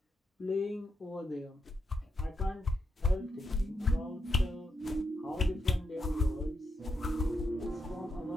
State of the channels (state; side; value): normal; both; correlation 0.84